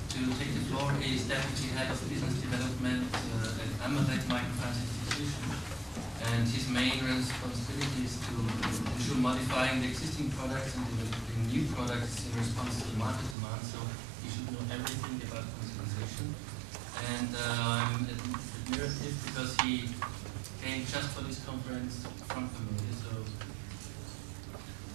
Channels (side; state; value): left; drops out; at 13.4 s